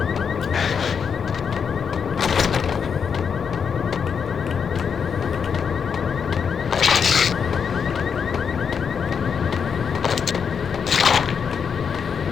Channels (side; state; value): right; quieter; 6.7 dB